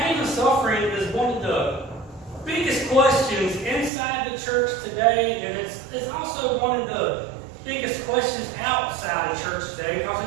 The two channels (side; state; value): left; drops out; at 3.9 s